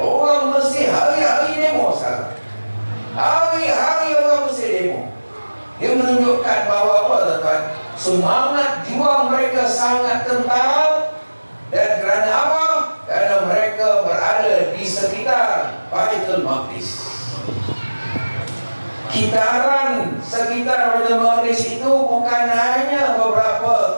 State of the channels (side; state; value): both; inverted; correlation -1.00